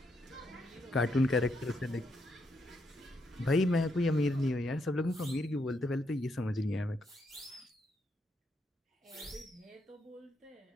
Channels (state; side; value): normal; both; correlation 0.78